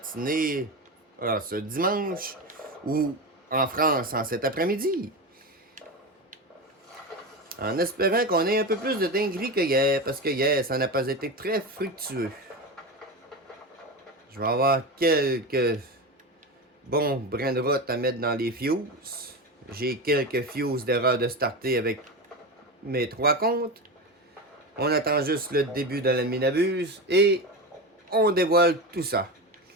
ce dimanche, ou en France en cet après-midi. En espérant qu'on ait un peu plus de dinguerie que hier, parce que hier, ça n'a pas été très fructueux. Je vais avoir quelques bons brins de route à mettre dans les fuses. J'ai quelques fuses d'erreur de starter avec mes 3 comptes. On attend juste le début de la minabuse et on dévoile tout ça.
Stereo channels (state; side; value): normal; both; correlation 0.21